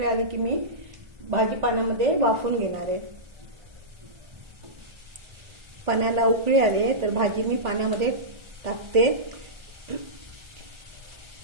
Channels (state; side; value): late; left; 1.4 ms